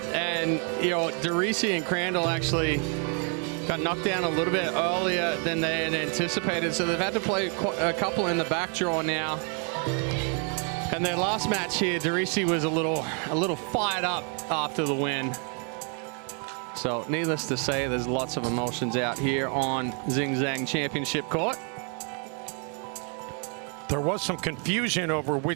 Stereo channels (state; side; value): quieter; left; 39.4 dB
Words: and you know, DeRisi and Crandall actually got knocked down a little bit earlier than they had anticipated, so they've had to play a couple in the back draw now. And their last match here, DeRisi was a little fired up after the win. So needless to say, there's lots of emotions out here on Zing Zang Championship Court. There was some confusion over